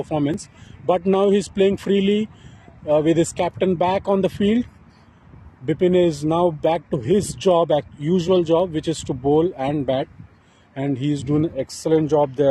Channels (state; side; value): identical; both; correlation 1.00